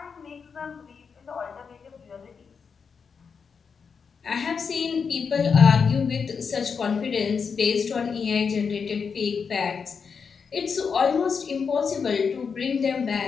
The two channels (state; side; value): quieter; right; 5.9 dB